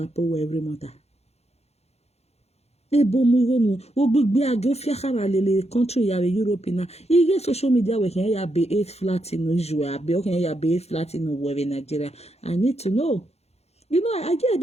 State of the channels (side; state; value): right; late; 0.31 ms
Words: pay every month. E bo mu igo no ogbegbe age fiakara lele country ya Europe na. Ige social media we kan ya be 8 flat in Nigeria, be o kan ya be 8 flat in Nigeria. I need to know. You know, again,